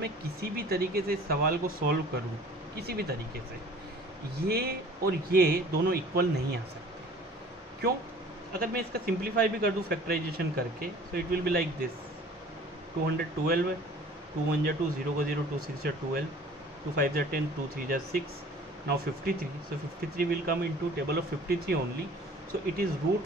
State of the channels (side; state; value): both; normal; correlation 0.48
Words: किसी भी तरीके से इस सवाल को सॉल्व करूँ, किसी भी तरीके से, ये और ये दोनों इक्वल नहीं आ सकते। क्यों? अगर मैं इसका सिंप्लीफाई भी कर दूँ फैक्टराइजेशन करके, सो it will be like this, 212 है, 2 × 1 = 2, 0 × 0, 2 × 6 = 12, 2 × 5 = 10, 2 × 3 = 6, now 53, so 53 will come into table of 53 only, so it is